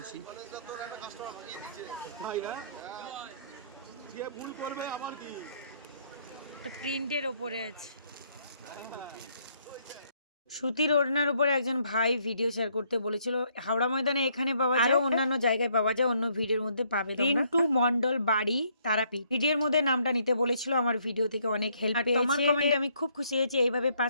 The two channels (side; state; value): both; inverted; correlation -0.68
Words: প্রিন্টের ওপরে আছে। সুতির ওড়নার উপরে একজন ভাই ভিডিও শেয়ার করতে বলেছিল। হাওড়া ময়দানে এখানে পাওয়া যায়, আরো অন্যান্য জায়গায় পাওয়া যায়, অন্য ভিডিওর মধ্যে পাবে। রিন্টু মন্ডল বাড়ি তারাপীঠ ভিডিওর মধ্যে নামটা নিতে বলেছিল। আমার ভিডিও থেকে অনেক হেল্প পেয়েছি। তোমার কমেন্টে আমি খুব খুশি হয়েছি। এইভাবে